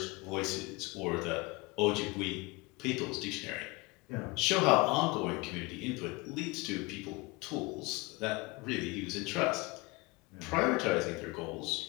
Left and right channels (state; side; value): quieter; right; 25.0 dB